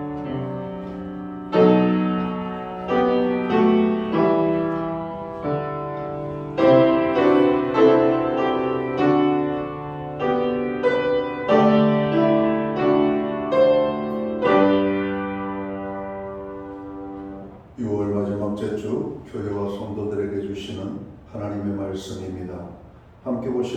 6월 마지막째 주 교회와 성도들에게 주시는 하나님의 말씀입니다. 함께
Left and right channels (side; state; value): both; identical; correlation 1.00